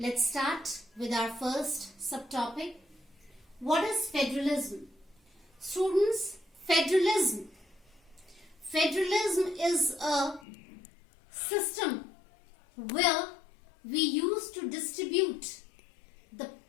start with our first subtopic. What is federalism? Students, federalism is a system where we use to distribute the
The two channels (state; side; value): drops out; right; at 10.5 s